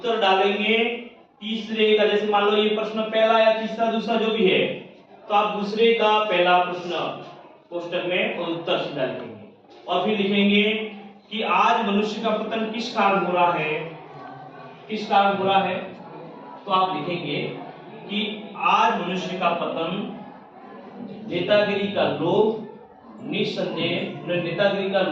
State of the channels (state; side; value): identical; both; correlation 1.00